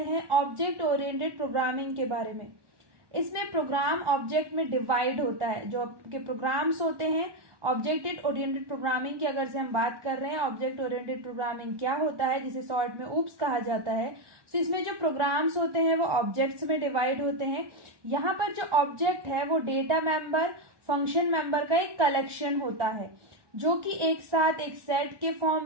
हैं ऑब्जेक्ट ओरिएंटेड प्रोग्रामिंग के बारे में। इसमें प्रोग्राम ऑब्जेक्ट में डिवाइड होता है। जो आपके प्रोग्राम्स होते हैं ऑब्जेक्ट ओरिएंटेड प्रोग्रामिंग की अगर से हम बात कर रहे हैं, ऑब्जेक्ट ओरिएंटेड प्रोग्रामिंग क्या होता है जिसे शॉर्ट में ऊप्स कहा जाता है। तो इसमें जो प्रोग्राम्स होते हैं वो ऑब्जेक्ट्स में डिवाइड होते हैं। यहाँ पर जो ऑब्जेक्ट है वो डेटा मेंबर, फंक्शन मेंबर का एक कलेक्शन होता है जो कि एक साथ एक सेट के फॉर्म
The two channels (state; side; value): late; left; 1.2 ms